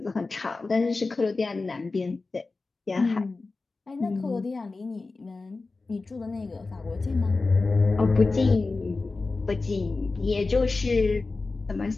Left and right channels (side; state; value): right; quieter; 3.7 dB